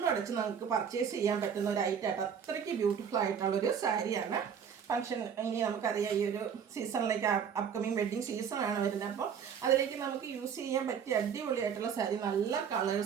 നമുക്ക് പർച്ചേസ് ചെയ്യാൻ പറ്റുന്ന ഒരു ഐറ്റമായിട്ട് അത്രയ്ക്ക് ബ്യൂട്ടിഫുൾ ആയിട്ടുള്ളൊരു സാരിയാണ്. ഫംഗ്ഷൻ ഇനി നമുക്കറിയാം ഈ ഒരു സീസണിലേക്ക് അപ്കമിങ് വെഡ്ഡിങ് സീസണാണ് വരുന്നത്. അപ്പോൾ അതിലേക്ക് നമുക്ക് യൂസ് ചെയ്യാൻ പറ്റിയ അടിപൊളിയായിട്ടുള്ള സാരി നല്ല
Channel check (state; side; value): quieter; left; 7.5 dB